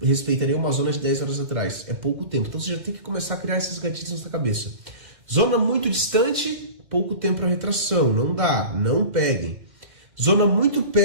respeitaria uma zona de 10 horas atrás. É pouco tempo. Então você já tem que começar a criar esses gatilhos na sua cabeça. Zona muito distante, pouco tempo para retração. Não dá, não peguem. Zona muito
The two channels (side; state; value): left; late; 2.3 ms